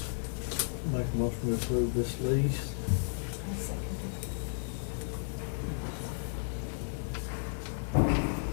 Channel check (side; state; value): right; silent; 55 dB below the other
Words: a motion to approve this lease.